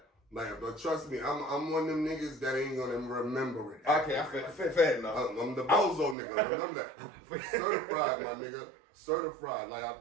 Like, but trust me, I'm one of them niggas that ain't gonna remember it. Okay, I fair enough. I'm the bozo nigga, remember that. Certified, my nigga. Certified.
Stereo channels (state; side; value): drops out; left; at 6.2 s